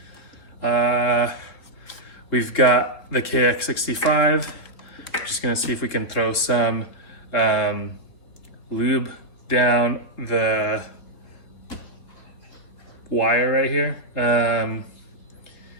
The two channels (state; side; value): late; right; 3.8 ms